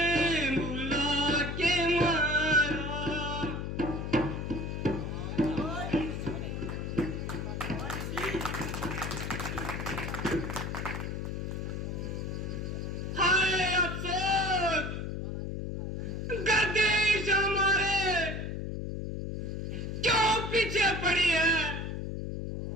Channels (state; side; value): noise; left; hum, 4 dB below the sound